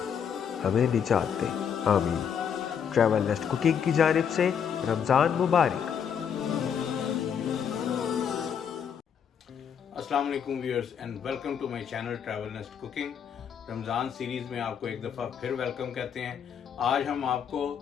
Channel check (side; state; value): right; quieter; 7.7 dB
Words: हमें निजात दे, आमीन। ट्रैवल नेस्ट कुकिंग की जानिब से रमज़ान मुबारक। अस्सलाम वालेकुम viewers and welcome to my channel travel nest cooking. Ramzan series में आपको एक दफ़ा फिर वेलकम कहते हैं। आज हम आपको